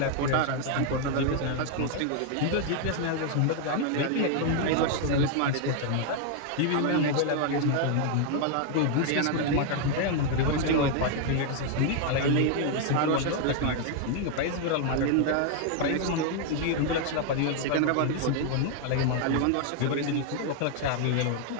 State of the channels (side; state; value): both; different; correlation 0.00